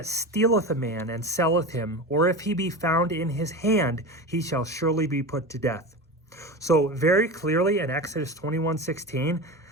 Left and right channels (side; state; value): both; normal; correlation 0.27